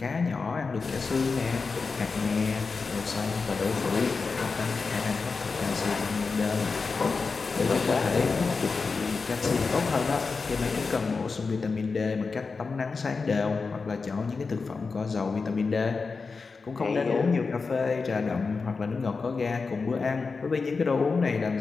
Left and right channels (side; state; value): right; quieter; 4.5 dB